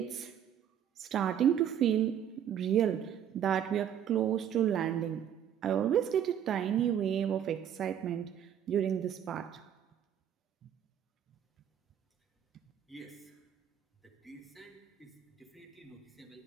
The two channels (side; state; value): left; quieter; 9.5 dB